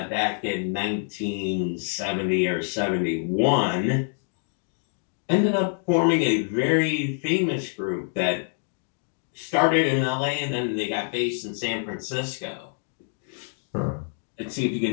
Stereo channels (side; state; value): right; silent; 61 dB below the other